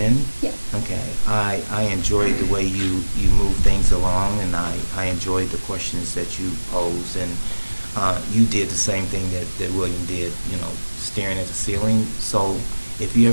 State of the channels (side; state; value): both; inverted; correlation -1.00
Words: Yes. Okay. I enjoyed the way you move things along, and I enjoyed the questions that you posed, and you did the same thing that William did, staring at the ceiling. So if you